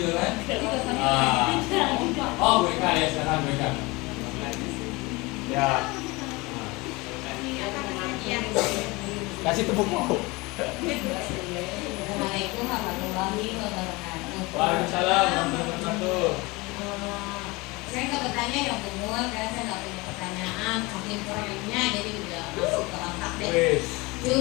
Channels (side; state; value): right; quieter; 24.0 dB